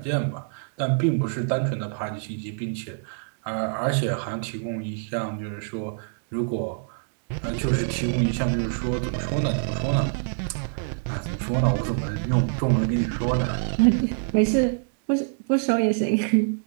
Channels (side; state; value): left; silent; digital silence